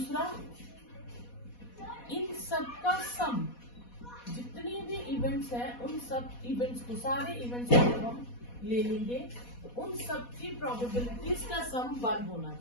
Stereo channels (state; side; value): late; right; 4.1 ms